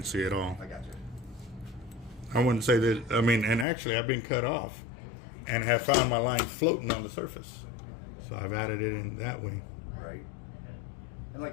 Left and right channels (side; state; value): right; drops out; at 3.7 s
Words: at all. I got you. I wouldn't say that. I mean, and actually, I've been cut off and have found my line floating on the surface. So I've added it in that way. Right. And like